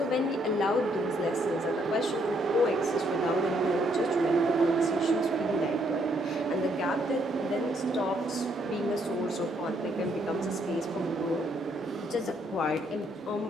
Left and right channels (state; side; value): normal; both; correlation 0.71